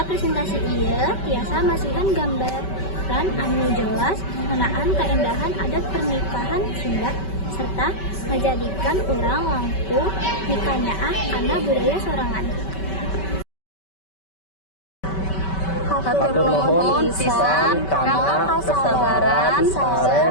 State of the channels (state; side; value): late; right; 5.2 ms